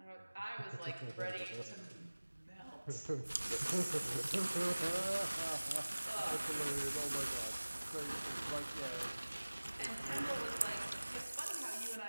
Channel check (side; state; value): both; inverted; correlation -1.00